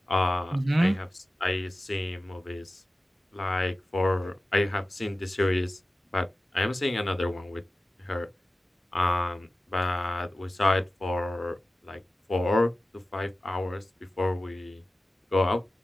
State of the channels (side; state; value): both; normal; correlation 0.95